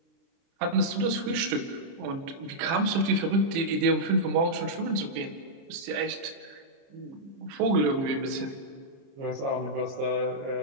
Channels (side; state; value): left; late; 29 ms